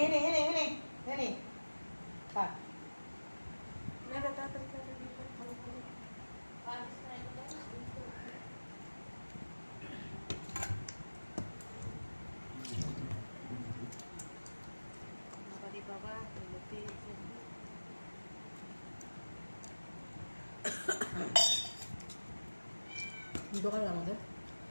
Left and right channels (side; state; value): both; inverted; correlation -1.00